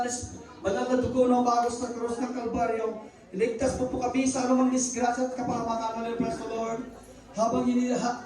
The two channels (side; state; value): both; identical; correlation 1.00